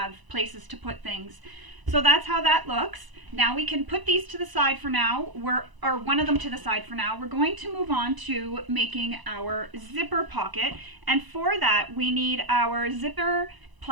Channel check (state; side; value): late; left; 1.0 ms